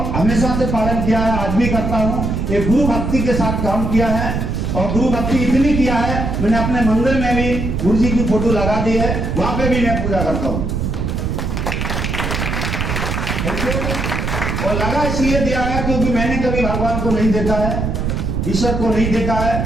हमेशा से पालन किया है, आज भी करता हूं। एक गुरु भक्ति के साथ काम किया है और गुरु भक्ति इतनी किया है, मैंने अपने मंदिर में भी गुरु जी की फोटो लगा दी है, वहां पे भी मैं पूजा करता हूं। और लगा इसलिए दिया है क्योंकि मैंने कभी भगवान को नहीं देखा है, ईश्वर को नहीं देखा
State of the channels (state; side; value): noise; right; rumble, 2 dB below the sound